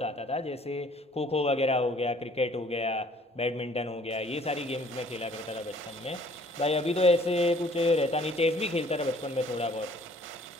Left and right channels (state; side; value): normal; both; correlation 0.57